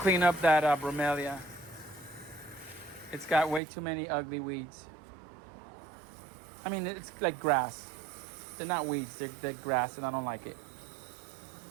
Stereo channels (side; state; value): left; drops out; at 3.6 s